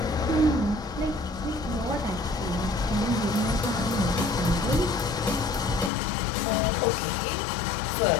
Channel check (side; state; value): right; drops out; at 5.9 s